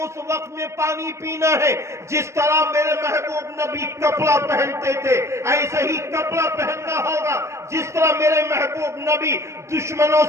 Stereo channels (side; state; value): left; late; 0.13 ms